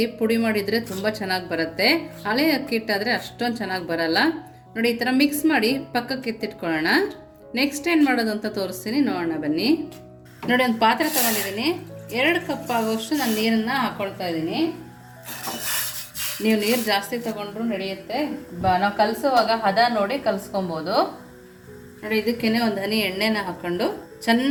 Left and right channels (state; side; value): identical; both; correlation 1.00